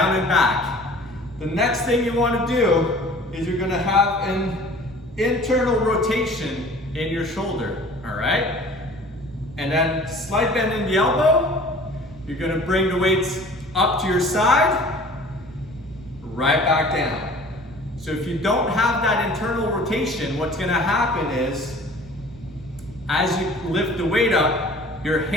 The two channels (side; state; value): both; normal; correlation 0.47